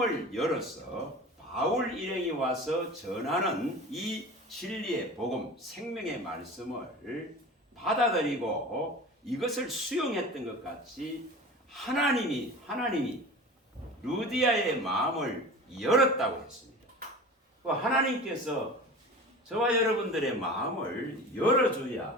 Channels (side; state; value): both; normal; correlation 0.35